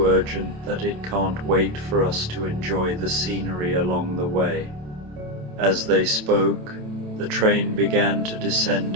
urgent that it can't wait for us to enjoy the scenery along the way." As they spoke, the train began to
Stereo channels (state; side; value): late; left; 27 ms